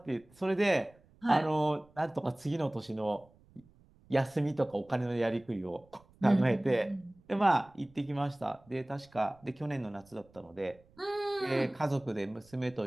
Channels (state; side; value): noise; right; rumble, 29 dB below the sound